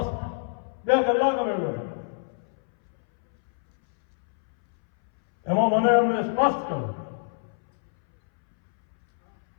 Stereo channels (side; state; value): right; silent; 62 dB below the other